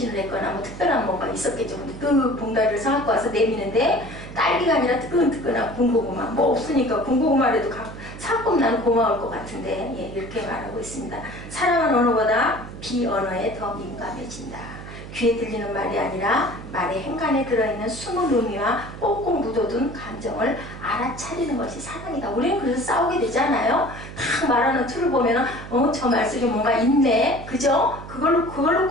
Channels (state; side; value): noise; right; hum, 12 dB below the sound